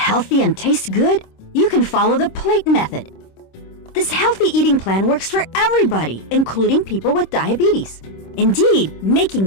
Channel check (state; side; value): late; right; 26 ms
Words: and tastes good? You can follow the plate method. This healthy eating plan works for everybody, including people with diabetes. Indeed, making